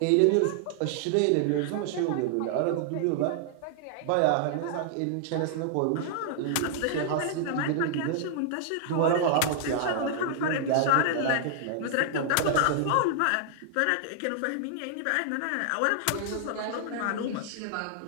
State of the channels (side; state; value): both; different; correlation -0.01